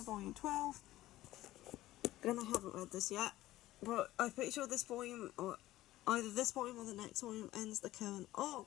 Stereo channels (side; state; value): right; quieter; 15.9 dB